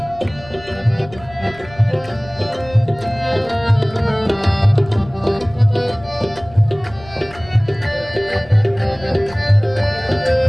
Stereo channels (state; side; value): noise; left; rumble, 20 dB below the sound